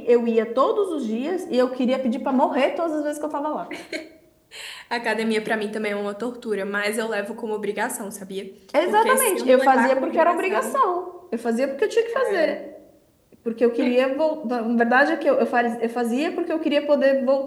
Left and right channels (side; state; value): both; identical; correlation 1.00